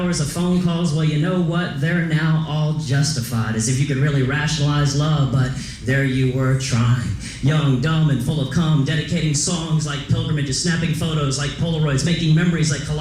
of phone calls. Well, you know what? They're now all justified, as if you could really rationalize love, but there you were trying. Young, dumb, and full of cum, dedicating songs like pilgrimages, snapping photos like Polaroids, making memories like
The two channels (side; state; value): both; identical; correlation 1.00